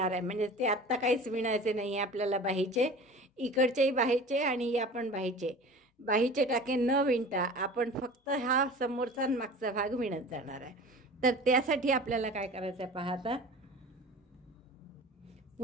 आहे. म्हणजे ते आत्ता काहीच विणायचे नाही आहे आपल्याला बाहीचे. इकडचेही बाहीचे आणि या पण बाहीचे टाके न विणता आपण फक्त हा समोरचा आणि मागचा भाग विणत जाणार आहे. तर त्यासाठी आपल्याला काय करायचं आहे पहा. आता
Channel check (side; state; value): both; normal; correlation 0.39